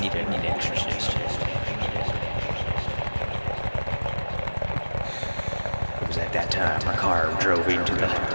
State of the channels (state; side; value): inverted; both; correlation -1.00